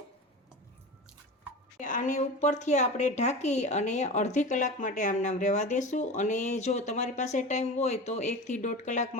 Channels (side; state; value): both; normal; correlation 0.30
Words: આને ઉપરથી આપણે ઢાંકી અને અડધી કલાક માટે આમ નામ રહેવા દેશું। અને જો તમારી પાસે ટાઈમ હોય તો 1 થી 1.5 કલાક